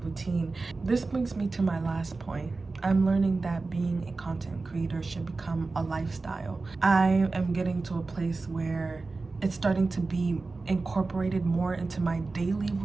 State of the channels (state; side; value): quieter; left; 3.7 dB